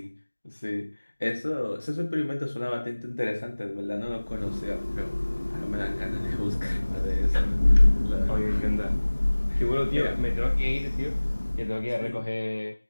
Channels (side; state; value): both; inverted; correlation -1.00